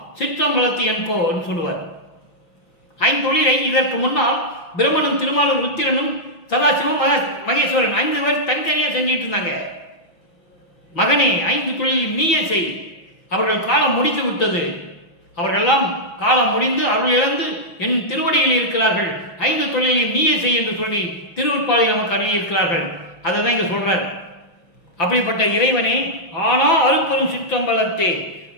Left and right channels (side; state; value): right; late; 5.9 ms